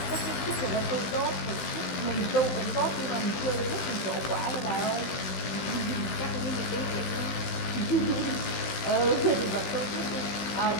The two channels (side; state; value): right; late; 15 ms